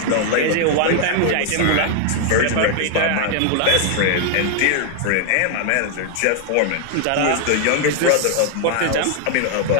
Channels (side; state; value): both; different; correlation 0.00